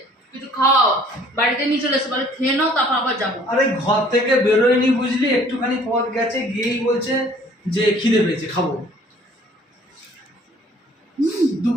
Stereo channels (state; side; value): normal; both; correlation 0.55